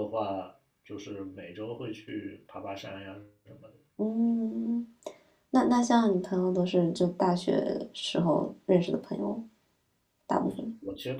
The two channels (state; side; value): identical; both; correlation 1.00